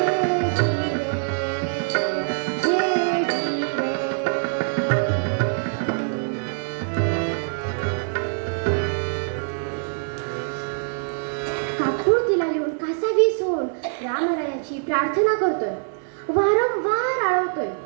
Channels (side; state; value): left; silent; 58 dB below the other